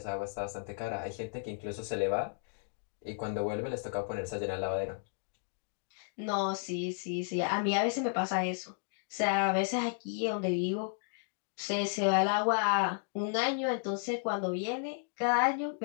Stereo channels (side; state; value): right; silent; 55 dB below the other